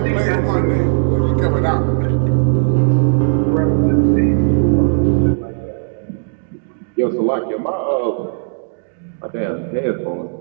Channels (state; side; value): silent; left; digital silence